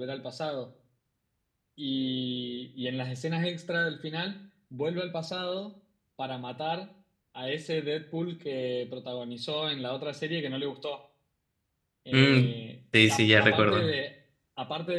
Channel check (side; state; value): both; identical; correlation 1.00